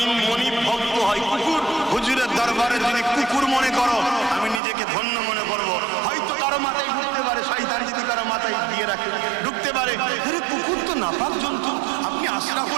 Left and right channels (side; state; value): left; drops out; at 4.6 s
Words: মনিব ভক্ত হয় কুকুর, হুজুরের দরবারে যদি কুকুর মনে করো আমি নিজেকে ধন্য মনে করবো। হয়তো কারো মাথায় ঢুকতে পারে, শয়তান যদি কারো মাথায় দিয়ে রাখে ঢুকতে পারে, আরে কুকুর তো নাপাক জন্তু, আপনি